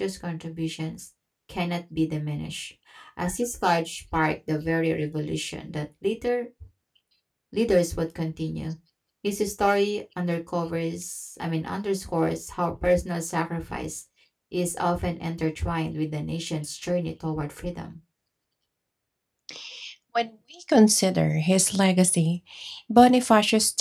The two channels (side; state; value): both; identical; correlation 1.00